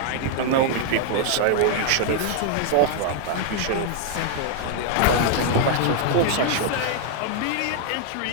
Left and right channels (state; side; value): different; both; correlation 0.00